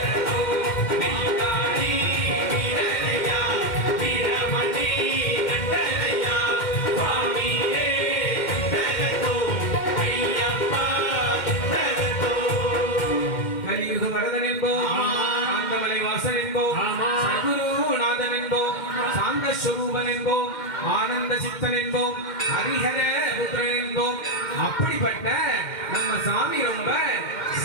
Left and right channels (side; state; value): right; late; 2.1 ms